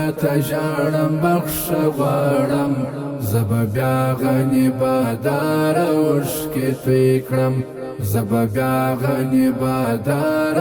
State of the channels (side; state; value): both; identical; correlation 1.00